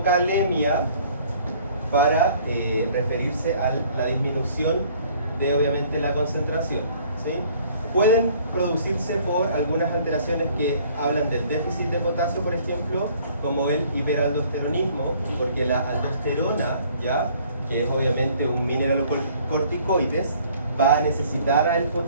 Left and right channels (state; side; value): inverted; both; correlation -0.57